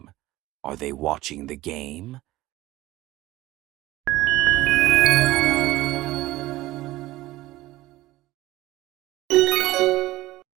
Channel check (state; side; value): quieter; left; 17.4 dB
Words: Are they watching the game?